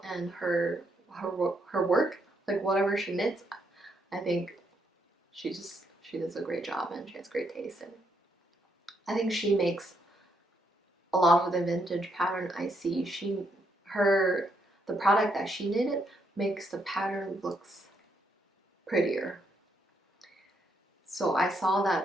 and her work, like whatever she knits. I think she does a great job and she has great taste, and I think she makes a lot of the vintage pattern I see. The product that she knitted makes the pattern looks prettier. So I saw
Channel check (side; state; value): both; normal; correlation 0.76